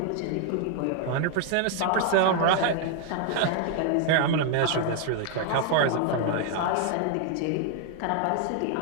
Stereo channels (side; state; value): both; different; correlation 0.00